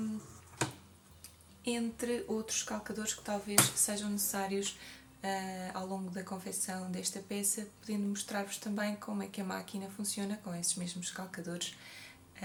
Entre outros calcadores que talvez sejam necessários ao longo da confecção desta peça, podendo mostrar-vos também como é que a máquina funciona com esses mesmos calcadores.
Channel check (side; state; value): both; identical; correlation 1.00